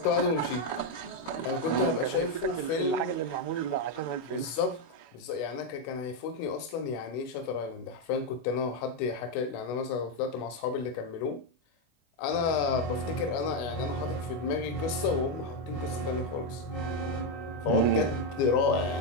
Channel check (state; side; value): late; right; 25 ms